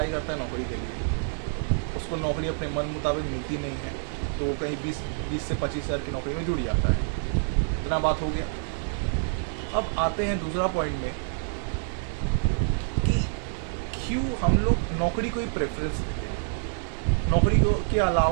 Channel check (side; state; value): left; silent; digital silence